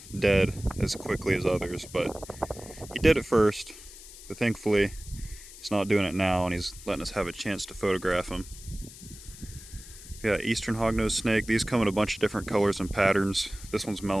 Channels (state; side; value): noise; left; hiss, 17 dB below the sound